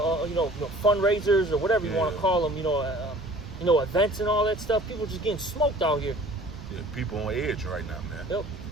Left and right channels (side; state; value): right; noise; rumble, 15 dB below the sound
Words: fundraisers or whatever you want to call them. You know, events and all that stuff. People just getting smoked out here. Yeah, people on edge right now, man. Yep.